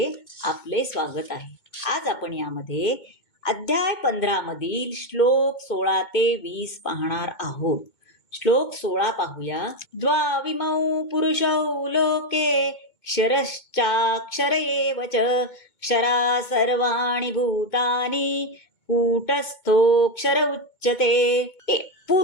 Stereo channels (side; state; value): right; late; 2.2 ms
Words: आपले स्वागत आहे. आज आपण यामध्ये अध्याय 15 मधील श्लोक 16 ते 20 पाहणार आहोत. श्लोक 16 पाहूया. द्वाविमौ पुरुषौ लोके क्षरश्चाक्षर एव च क्षरा सर्वाणि भूतानि कूटस्थोऽक्षर उच्यते.